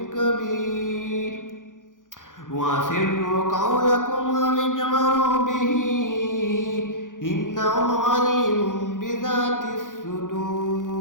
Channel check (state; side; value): late; right; 0.88 ms